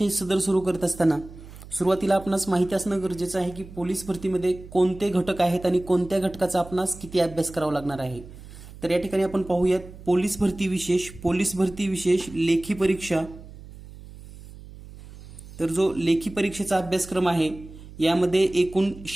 सदर सुरू करत असताना सुरुवातीला आपणास माहिती असणं गरजेचं आहे की पोलीस भरतीमध्ये कोणते घटक आहेत आणि कोणत्या घटकाचा आपणास किती अभ्यास करावा लागणार आहे। तर या ठिकाणी आपण पाहूयात पोलीस भरती विशेष, पोलीस भरती विशेष लेखी परीक्षा। तर जो लेखी परीक्षेचा अभ्यासक्रम आहे यामध्ये एकूण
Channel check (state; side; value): noise; right; hum, 17 dB below the sound